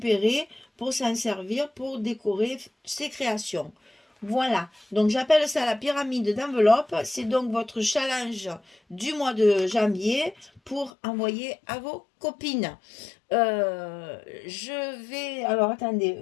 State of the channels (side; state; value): right; drops out; at 10.9 s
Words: pour s'en servir pour décorer ses créations. Voilà, donc j'appelle ça la pyramide d'enveloppe. C'est donc votre challenge du mois de janvier pour envoyer à vos copines. Je vais... Alors, attendez,